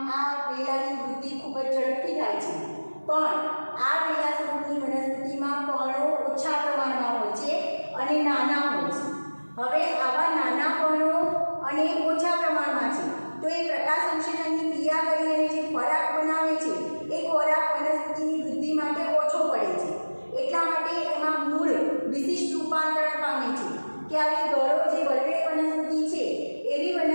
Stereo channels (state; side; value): inverted; both; correlation -1.00